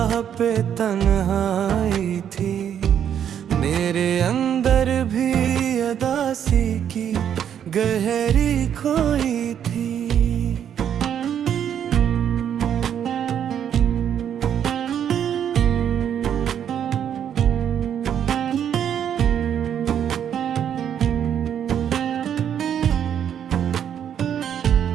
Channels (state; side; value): quieter; left; 9.1 dB